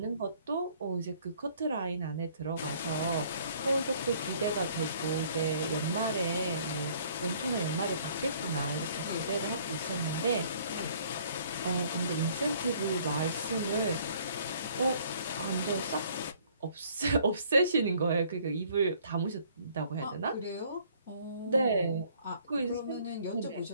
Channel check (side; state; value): both; inverted; correlation -0.59